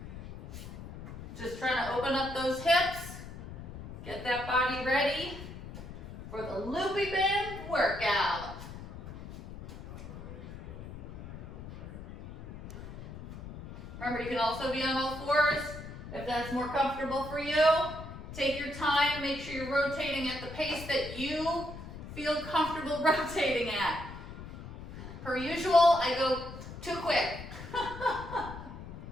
Just trying to open up those hips, get that body ready for the loopy band workout. Remember, you can also be on all fours if that's more comfortable for you. Take your time, make sure you're rotating at the pace that you feel comfortable rotating at. Per usual, I go too quick.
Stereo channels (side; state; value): left; noise; rumble, 12 dB below the sound